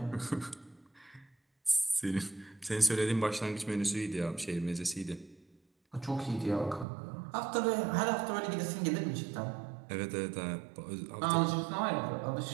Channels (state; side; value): drops out; left; at 6.9 s